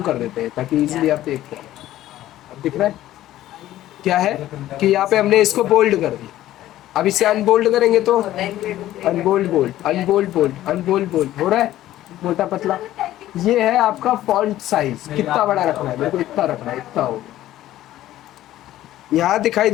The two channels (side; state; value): right; quieter; 14.0 dB